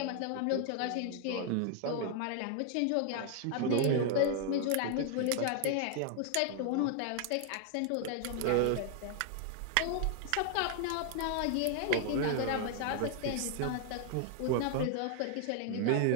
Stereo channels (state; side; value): different; both; correlation 0.00